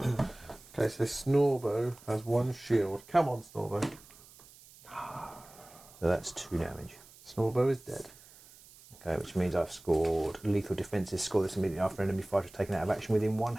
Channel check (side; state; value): right; noise; hiss, 22 dB below the sound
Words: hammer. Okay, so Snorbo has 1 shield. Come on, Snorbo. So that's 2 damage. Snorbo is dead. Okay, which means I've scored lethal defences. Score this immediately after enemy fighter is taken out of action within 1